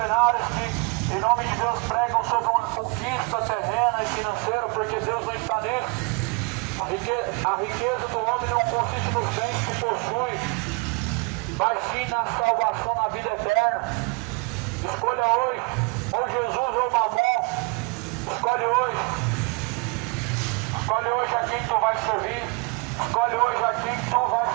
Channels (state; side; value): quieter; left; 28.6 dB